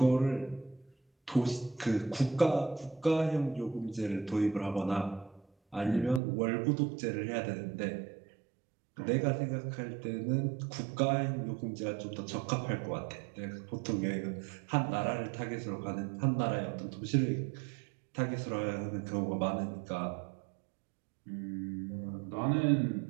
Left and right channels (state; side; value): drops out; left; at 6.2 s